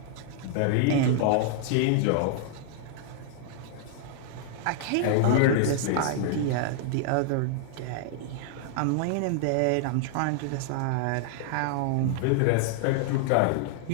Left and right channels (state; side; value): different; both; correlation -0.01